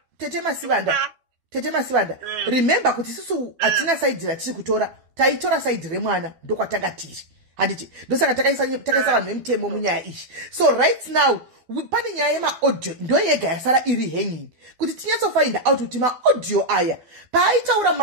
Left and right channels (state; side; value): late; left; 12 ms